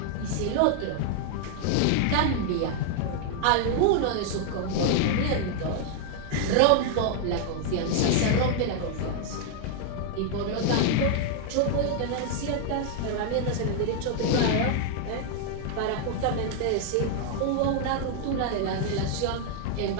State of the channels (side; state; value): both; different; correlation 0.00